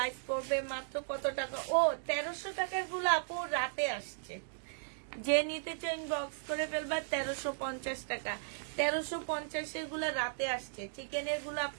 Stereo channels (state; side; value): silent; left; digital silence